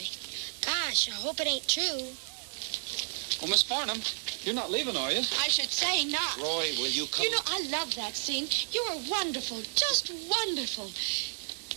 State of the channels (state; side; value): silent; left; 57 dB below the other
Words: Gosh, I hope it ain't true. Well, Miss Farnham, you're not leaving, are you? I should say not. Roy, will you come? You know, I love that scene. You are wonderful, just wonderful.